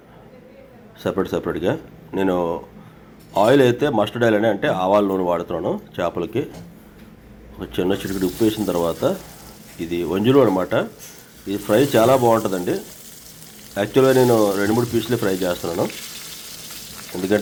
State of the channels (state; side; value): identical; both; correlation 1.00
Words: సెపరేట్గా. నేను ఆయిల్ అయితే మస్టర్డ్ ఆయిల్ అంటే ఆవాల నూనె వాడుతున్నాను చేపలకి. ఒక చిన్న చిటికెడు ఉప్పు వేసిన తర్వాత, ఇది వంజులు అనమాట. ఇది ఫ్రై చాలా బాగుంటుందండి. యాక్చువల్గా నేను 2-3 పీసులే ఫ్రై చేస్తున్నాను,